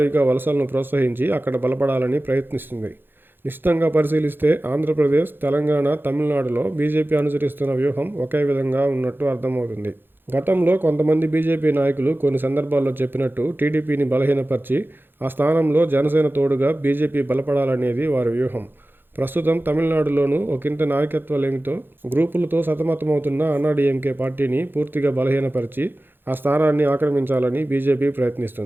వలసలను ప్రోత్సహించి అక్కడ బలపడాలని ప్రయత్నిస్తుంది. నిశితంగా పరిశీలిస్తే ఆంధ్రప్రదేశ్, తెలంగాణ, తమిళనాడులో బీజేపీ అనుసరిస్తున్న వ్యూహం ఒకే విధంగా ఉన్నట్టు అర్థమవుతుంది. గతంలో కొంతమంది బీజేపీ నాయకులు కొన్ని సందర్భాల్లో చెప్పినట్టు టీడీపీని బలహీనపరిచి ఆ స్థానంలో జనసేన తోడుగా బీజేపీ బలపడాలనేది వారి వ్యూహం. ప్రస్తుతం తమిళనాడులోనూ ఒకంత నాయకత్వలేమితో గ్రూపులతో సతమతమవుతున్న అన్నాడీఎంకే పార్టీని పూర్తిగా బలహీనపరిచి ఆ స్థానాన్ని ఆక్రమించాలని బీజేపీ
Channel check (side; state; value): left; late; 0.10 ms